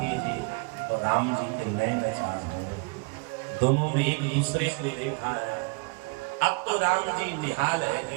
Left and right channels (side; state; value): left; quieter; 32.3 dB